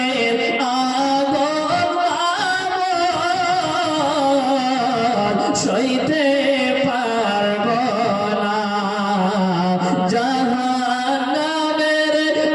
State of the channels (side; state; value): both; identical; correlation 1.00